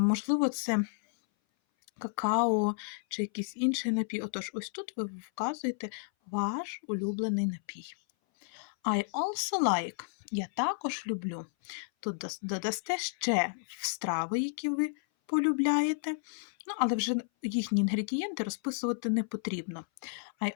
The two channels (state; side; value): silent; right; 56 dB below the other